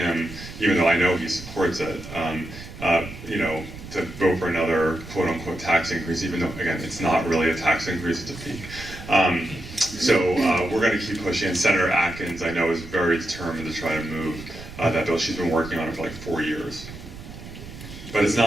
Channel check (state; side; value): noise; right; rumble, 14 dB below the sound